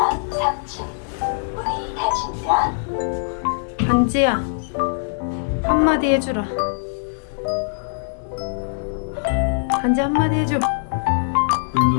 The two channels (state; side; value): silent; right; digital silence